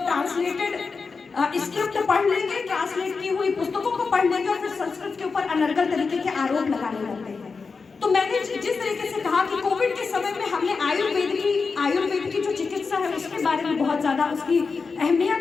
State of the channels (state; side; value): quieter; right; 4.7 dB